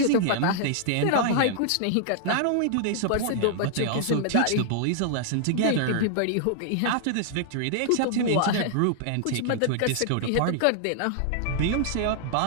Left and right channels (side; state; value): both; different; correlation -0.01